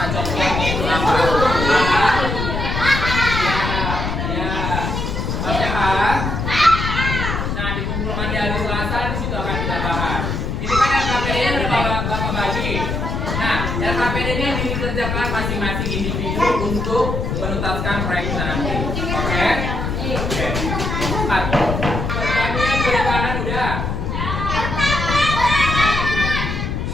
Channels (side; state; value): left; noise; rumble, 2 dB below the sound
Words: contohnya itu apa? Ya, oke Pak. Nah, dikumpulkan di hari Selasa, di situ akan kita bahas. Ini kan LKPD-nya udah bapak bagi. Nah, LKPD-nya dikerjakan masing-masing individu untuk menuntaskan proyek nanti. Oke? Oke. Pertanyaan perikanan udah.